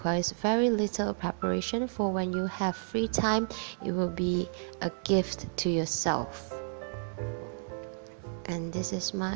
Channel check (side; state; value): left; silent; digital silence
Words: very little preparation, for when you have free time it will be a gift to yourself. And this is